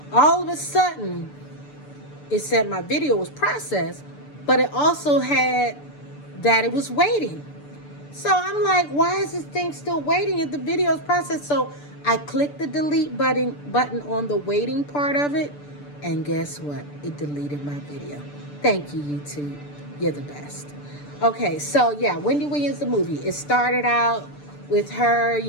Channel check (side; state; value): right; late; 6.8 ms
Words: all of a sudden, it said my video was processed, but it also had that it was waiting. So I'm like, why is this thing still waiting if the video is processed? So I clicked the delete button on the waiting part of it, and guess what? It deleted my video. Thank you, YouTube. You're the best. Okay, so yeah, Wendy Williams, the movie. It started out with her,